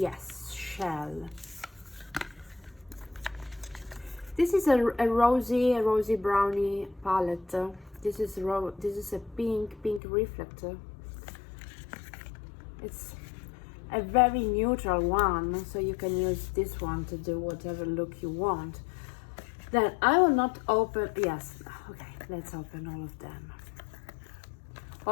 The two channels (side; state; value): right; drops out; at 10.0 s